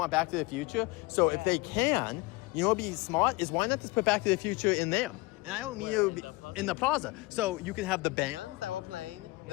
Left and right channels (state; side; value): quieter; right; 23.3 dB